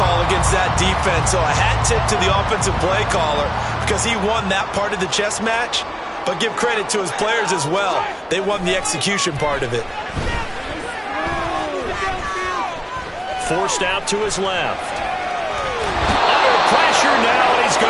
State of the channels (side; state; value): both; identical; correlation 1.00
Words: against that defense. So a hat tip to the offensive play caller because he won that part of the chess match. But give credit to his players as well. They won the execution part of it. Forced out to his left. Under pressure now, and he's